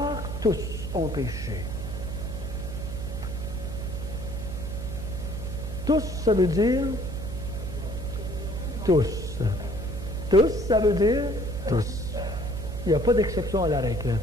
tous ont péché. Tous, ça veut dire tous. Tous, ça veut dire tous. Il n'y a pas d'exception à la règle.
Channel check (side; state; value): right; noise; hum, 6 dB below the sound